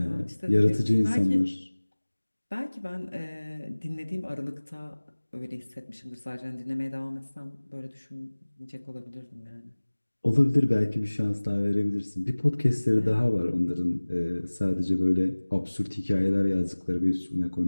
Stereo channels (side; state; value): both; inverted; correlation -1.00